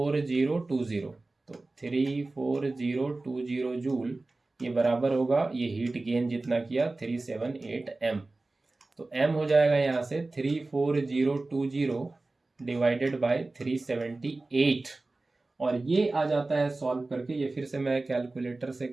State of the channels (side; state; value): left; quieter; 3.2 dB